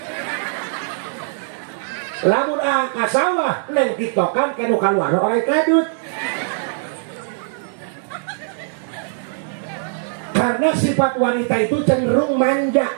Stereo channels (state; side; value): silent; left; digital silence